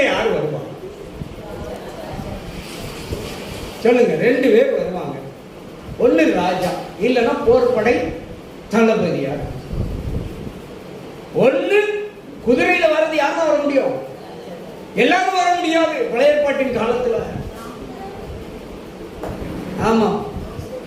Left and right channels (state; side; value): identical; both; correlation 1.00